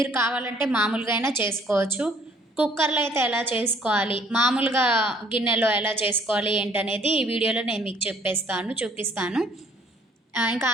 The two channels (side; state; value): both; normal; correlation 0.60